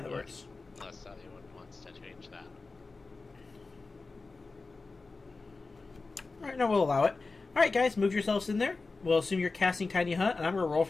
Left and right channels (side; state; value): right; quieter; 3.8 dB